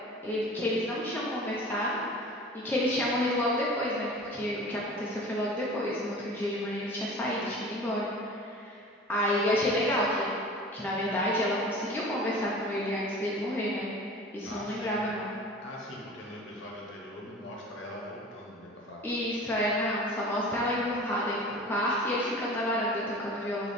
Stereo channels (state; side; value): normal; both; correlation 0.40